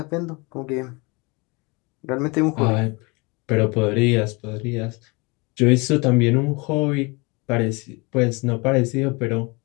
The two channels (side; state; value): right; quieter; 27.7 dB